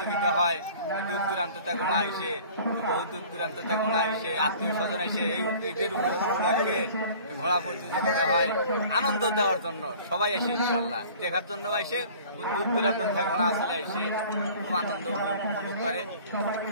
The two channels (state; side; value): inverted; both; correlation -0.47